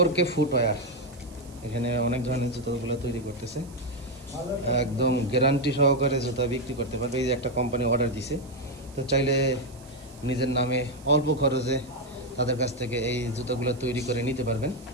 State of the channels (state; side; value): noise; right; hiss, 24 dB below the sound